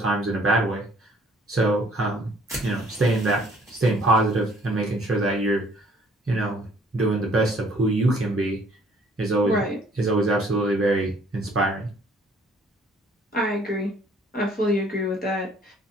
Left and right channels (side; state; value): both; normal; correlation 0.59